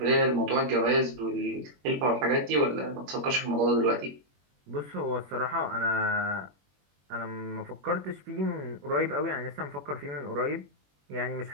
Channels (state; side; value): late; left; 21 ms